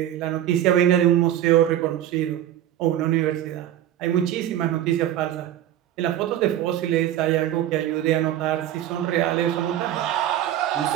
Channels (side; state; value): left; quieter; 11.9 dB